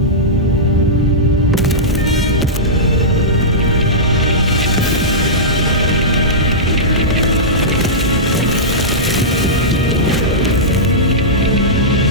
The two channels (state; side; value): normal; both; correlation -0.14